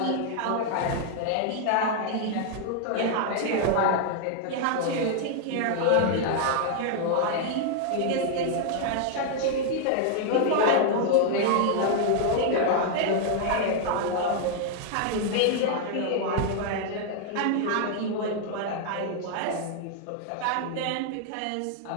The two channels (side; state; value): both; different; correlation 0.00